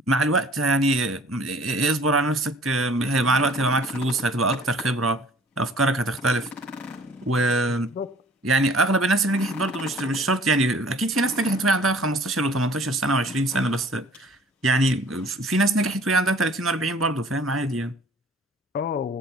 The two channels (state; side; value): normal; both; correlation 0.52